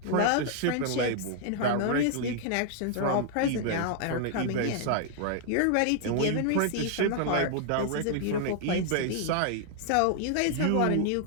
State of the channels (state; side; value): different; both; correlation -0.01